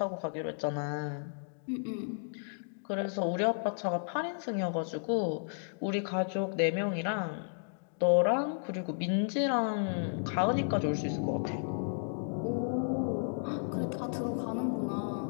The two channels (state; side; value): silent; right; digital silence